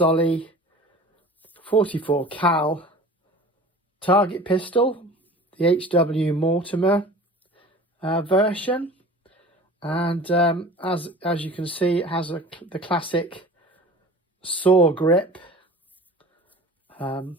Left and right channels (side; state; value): both; normal; correlation 0.41